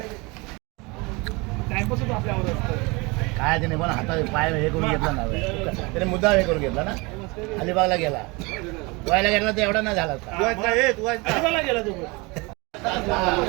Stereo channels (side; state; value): left; quieter; 26.3 dB